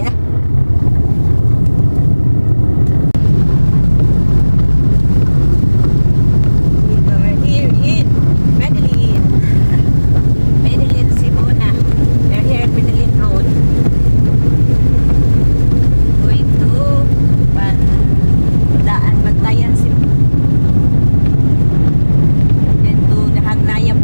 na. We're here in Medellin, Simona. We're here at Medellin Road. Going to Bantayan, Simona. Then to the Hagnaya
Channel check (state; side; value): inverted; both; correlation -1.00